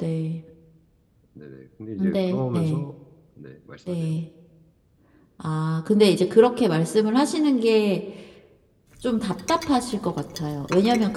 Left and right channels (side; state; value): both; identical; correlation 1.00